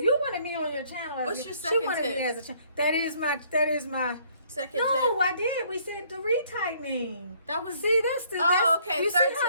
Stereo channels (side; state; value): both; inverted; correlation -0.62